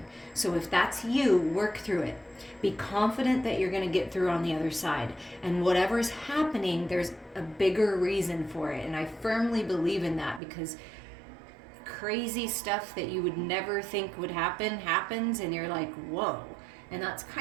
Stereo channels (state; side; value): drops out; left; at 10.4 s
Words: So if that's you, work through it. Be confident that you're going to get through on the other side. And whatever's happening, there's a bigger reason for it. And I firmly believe in that, because crazy stuff that you would never think would happen happens, and you're like, whoa. And that's